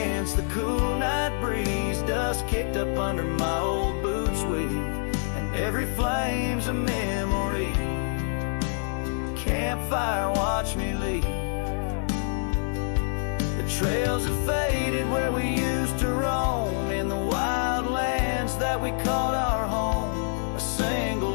the cool night breeze, dust kicked up under my old boots weave, and every flame's a memory. Campfire watched me leave. The trails have faded where we used to roam, in the wild lands that we called our home. A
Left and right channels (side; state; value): right; silent; digital silence